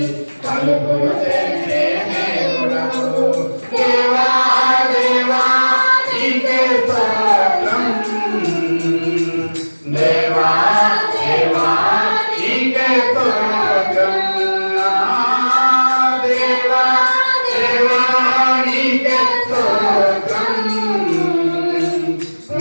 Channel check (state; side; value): inverted; both; correlation -1.00